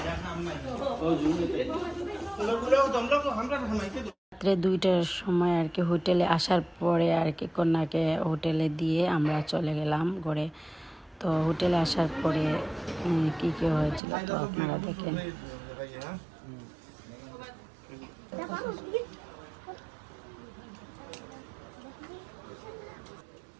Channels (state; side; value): drops out; left; at 14.0 s